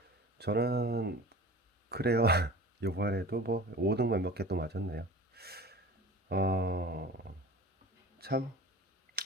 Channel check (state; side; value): normal; both; correlation 0.39